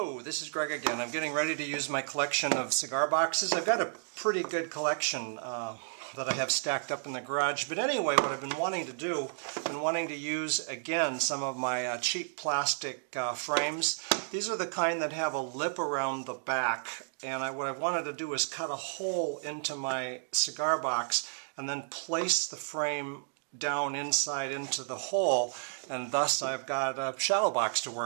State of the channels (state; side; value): silent; left; digital silence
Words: this is Greg again. I'm getting ready to use my collection of cigar boxes. I've got a pretty good collection that I have stacked up in the garage. But anyway, what I've been wanting to do, I've been wanting to use again some of my cheap plastic frames. These are the kind that have a lip around the back. And what I wanted to do is cut a hole into my cigar box and then place the frame down inside into the hole, and thus I've got a shadow box to